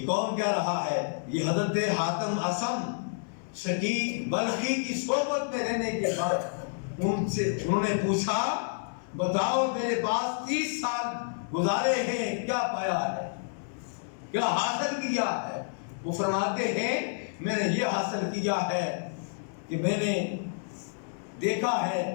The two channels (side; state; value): right; silent; 58 dB below the other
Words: کون کہہ رہا ہے؟ یہ حضرت حاتم اصم شقیق بلخی کی صحبت میں رہنے کے بعد انہوں نے پوچھا بتاؤ میرے پاس 30 سال گزارے ہیں، کیا پایا ہے، کیا حاصل کیا ہے؟ وہ فرماتے ہیں میں نے یہ حاصل کیا ہے کہ میں نے دیکھا ہے